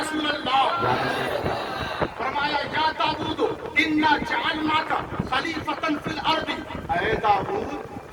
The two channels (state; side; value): identical; both; correlation 1.00